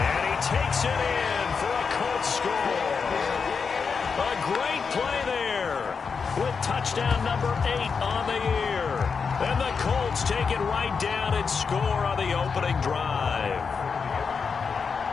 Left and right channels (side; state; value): right; quieter; 5.6 dB